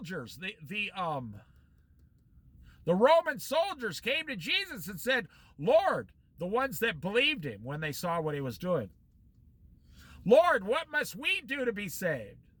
the Roman soldiers came to Jesus and said, "Lord," the ones that believed him when they saw what he was doing, "Lord, what must we do to be saved?"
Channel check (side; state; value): both; identical; correlation 1.00